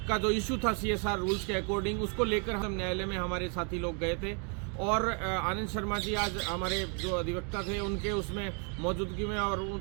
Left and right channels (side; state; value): left; quieter; 37.7 dB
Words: का जो इशू था सीएसआर रूल्स के अकॉर्डिंग, उसको लेकर हम न्यायालय में हमारे साथी लोग गए थे और आनंद शर्मा जी आज हमारे जो अधिवक्ता थे उनके उसमें मौजूदगी में और